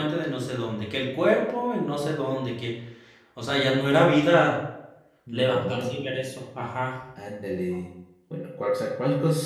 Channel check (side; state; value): both; identical; correlation 1.00